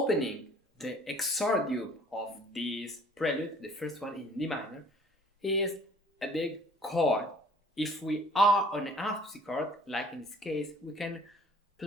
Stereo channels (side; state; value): both; normal; correlation 0.53